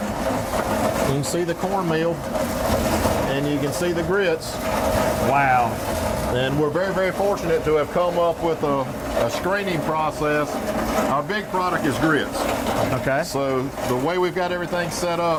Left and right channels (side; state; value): both; identical; correlation 1.00